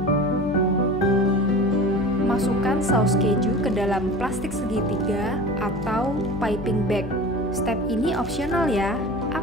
Masukkan saus keju ke dalam plastik segitiga atau piping bag. Step ini opsional ya.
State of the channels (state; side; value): noise; left; hum, 12 dB below the sound